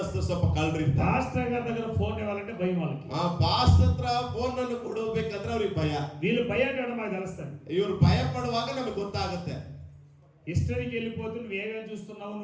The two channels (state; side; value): identical; both; correlation 1.00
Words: ಸ್ವಲ್ಪ ಕಳ್ರಿ. పాస్టర్ గారి దగ్గర ఫోన్ ఇవ్వాలంటే భయం వాళ్ళకి. ಪಾಸ್ಟರ್ ಹತ್ರ ಫೋನ್ ಅನ್ನು ಕೊಡಬೇಕಂದ್ರೆ ಅವ್ರಿಗೆ ಭಯ. వీళ్ళు భయపడడం మాకు తెలుస్తుంది. ಇವ್ರು ಭಯ ಪಡುವಾಗ ನಮಗೆ ಗೊತ್ತಾಗುತ್ತೆ. హిస్టరీకి వెళ్ళిపోతే నువ్వు ఏమేమి చూస్తున్నావు,